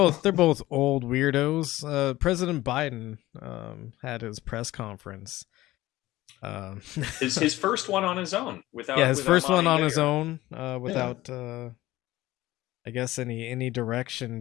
both old weirdos. President Biden had his press conference. His first one on his own without his first one on his own without I guess any direction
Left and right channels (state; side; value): quieter; right; 16.9 dB